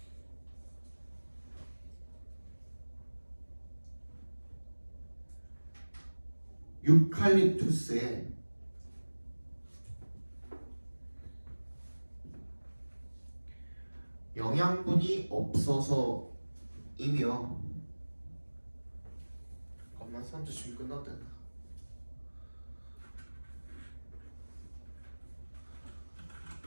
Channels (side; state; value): both; inverted; correlation -1.00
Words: 유칼립투스에 영양분이 없어서이며 잠깐만 선주 지금 끝났다.